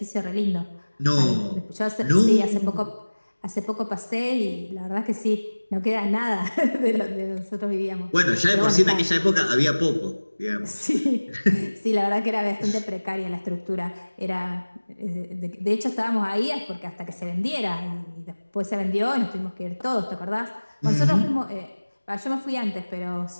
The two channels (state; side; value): inverted; both; correlation -1.00